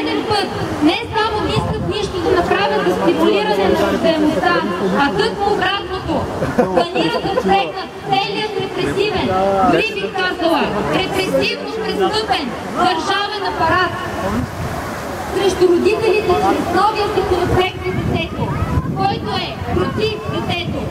път не само мислят нищо да направят за стимулиране на раждаемостта, а тъкмо обратното. Планират да впрегнат целият репресивен, дори бих казала, репресивно престъпен държавен апарат срещу родителите чрез новия законопроект за детето, който е против детето.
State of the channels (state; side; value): identical; both; correlation 1.00